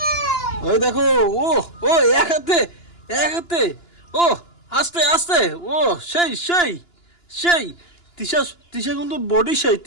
ওই দেখো। ও এক হাতে ও আস্তে ও সেই তৃষা কিন্তু বডি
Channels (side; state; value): right; late; 2.9 ms